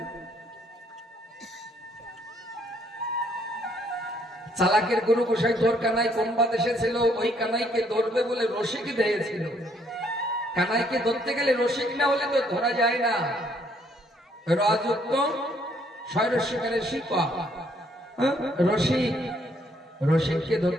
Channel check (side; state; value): both; normal; correlation 0.67